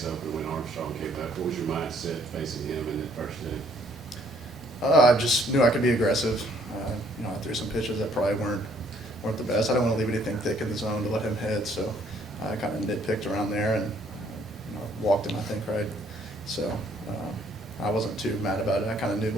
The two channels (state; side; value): normal; both; correlation 0.63